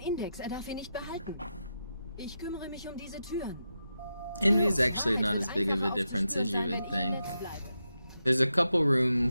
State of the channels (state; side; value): inverted; both; correlation -0.87